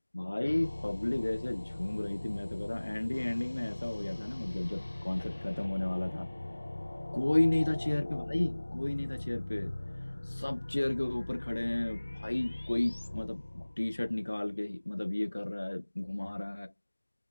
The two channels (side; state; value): both; inverted; correlation -1.00